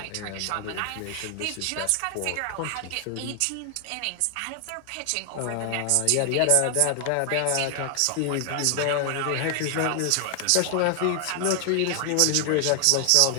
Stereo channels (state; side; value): different; both; correlation 0.00